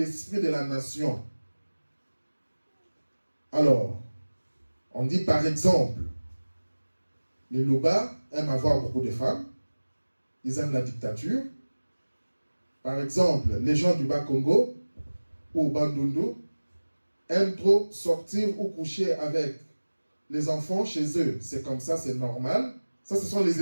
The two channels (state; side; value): inverted; both; correlation -1.00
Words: de la nation. Alors, on dit par exemple, les Luba aiment avoir beaucoup de femmes, ils aiment la dictature. Par exemple, les gens du Bas-Congo ou Bandundu aiment trop sortir ou coucher avec les enfants chez eux. C'est comme ça, c'est normal. Ça, ce sont les